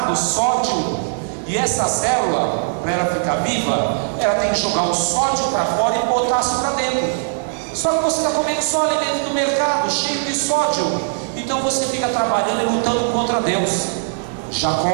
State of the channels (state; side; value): silent; left; digital silence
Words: sódio. E essa célula, para ela ficar viva, ela tem que jogar o sódio para fora e potássio para dentro. Só que você está comendo só alimento do mercado, cheio de sódio. Então você fica trabalhando e lutando contra Deus.